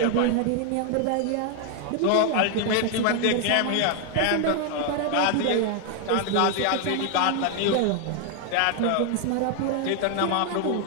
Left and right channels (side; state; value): both; different; correlation 0.00